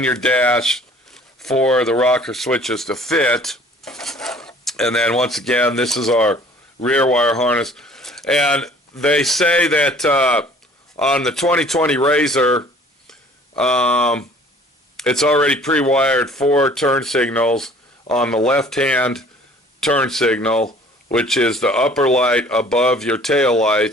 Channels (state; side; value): normal; both; correlation 0.52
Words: your dash for the rocker switches to fit. And then once again, this is our rear wire harness. And they say that on the 2020 RZR, it's already pre-wired 4 turn signals on the left-hand turn signal, which is the upper light above your tail